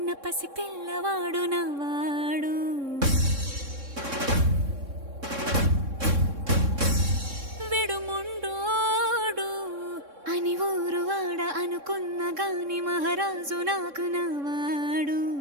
పసి పిల్లవాడు నవ్వాడు. విడు ముండోడు అని ఊరు వాడ అనుకున్న గాని మహారాజు నాకు నవ్వాడు.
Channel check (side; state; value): left; late; 3.6 ms